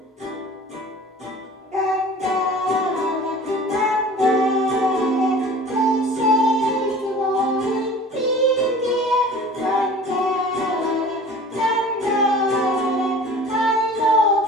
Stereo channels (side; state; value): both; normal; correlation 0.43